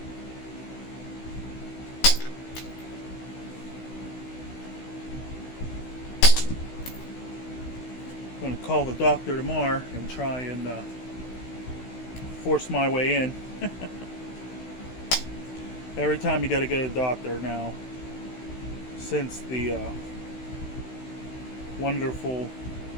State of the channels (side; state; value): right; late; 16 ms